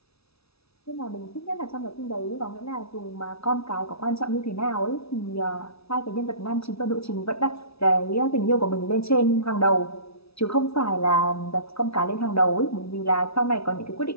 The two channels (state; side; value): late; right; 0.78 ms